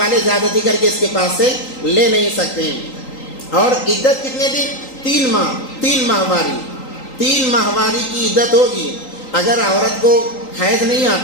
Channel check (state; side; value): late; right; 3.8 ms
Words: زیادتی کر کے اس کے پاس سے لے نہیں سکتے. اور عدت کتنے دن؟ 3 ماہ. 3 ماہواری 3 ماہواری کی عدت ہوگی. اگر عورت کو حیض نہیں